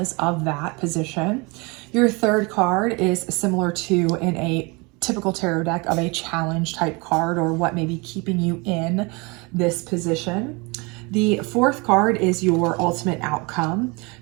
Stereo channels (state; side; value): quieter; left; 27.9 dB